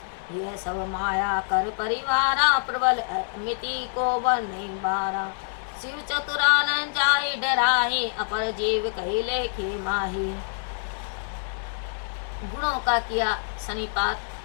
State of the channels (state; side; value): silent; right; digital silence